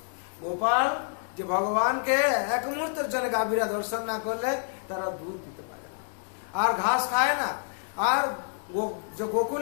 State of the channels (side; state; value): right; silent; 59 dB below the other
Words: গোপাল যে ভগবানকে এক মুহূর্তের জন্য গাভীরা দর্শন না করলে তারা দুধ দিতে পারে না, আর ঘাস খায় না। আর